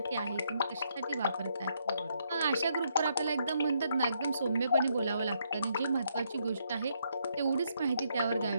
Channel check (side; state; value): both; inverted; correlation -0.74